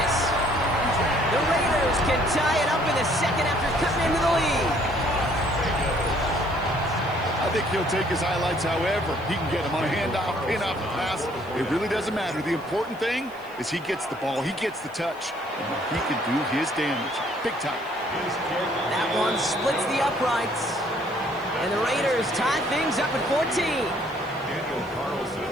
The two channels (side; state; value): left; noise; hiss, 27 dB below the sound